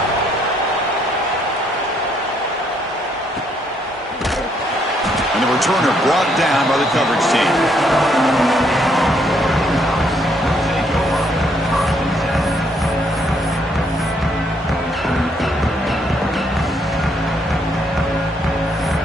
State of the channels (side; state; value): both; normal; correlation 0.71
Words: And the returner brought down by the coverage team.